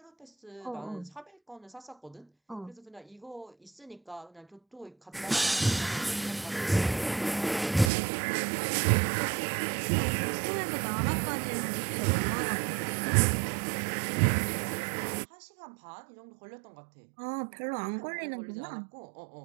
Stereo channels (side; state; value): left; drops out; at 7.9 s